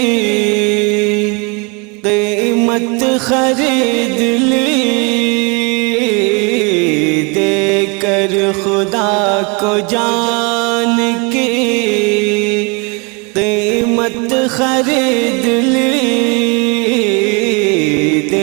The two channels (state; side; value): quieter; left; 30.7 dB